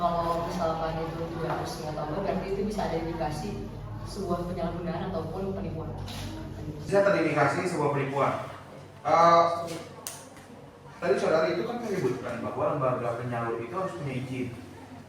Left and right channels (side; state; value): both; identical; correlation 1.00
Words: misalkan itu tidak resmi atau enggak, berarti itu bisa ada indikasi sebuah penyalahgunaan ataupun penipuan. Bisa terindikasi sebuah penipuan. Tadi saudara itu kan menyebutkan bahwa lembaga penyalur itu harus punya izin.